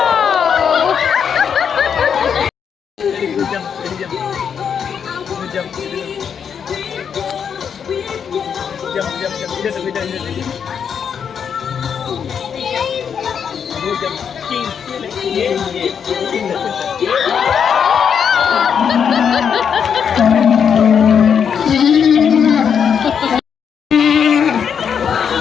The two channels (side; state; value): right; quieter; 7.3 dB